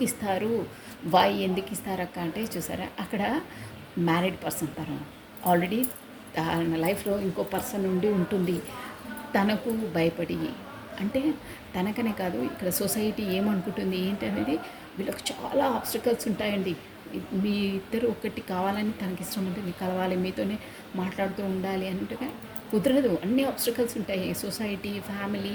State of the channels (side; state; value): both; identical; correlation 1.00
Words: ఇస్తారు? ఎందుకు ఇస్తారు అక్క అంటే చూసారా, అక్కడ మ్యారీడ్ పర్సన్ తను ఆల్రెడీ తన లైఫ్లో ఇంకో పర్సన్ ఉండి ఉంటుంది. తనకు భయపడి, అంటే తనకనే కాదు ఇక్కడ సొసైటీ ఏమనుకుంటుంది ఏంటి అనేది వీళ్ళకి చాలా ఆబ్స్టికల్స్ ఉంటాయండి. మీ ఇద్దరు ఒకటి కావాలని తనకి ఇష్టం ఉంటుంది, కలవాలి, మీతోనే మాట్లాడుతూ ఉండాలి అంటే కుదరదు. అన్ని ఆబ్స్టికల్స్ ఉంటాయి. సొసైటీ,